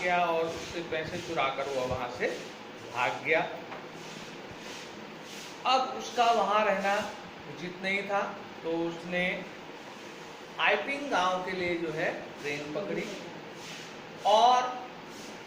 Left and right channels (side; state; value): both; identical; correlation 1.00